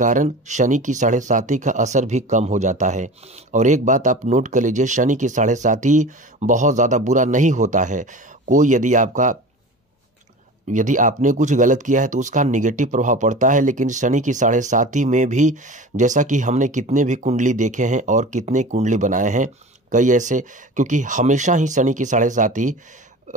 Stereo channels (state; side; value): normal; both; correlation 0.35